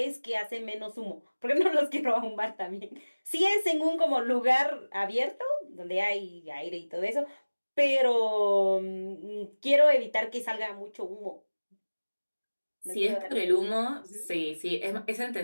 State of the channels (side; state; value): both; inverted; correlation -1.00